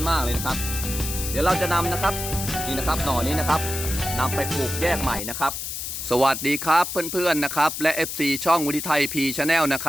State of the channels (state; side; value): noise; left; hiss, 5 dB below the sound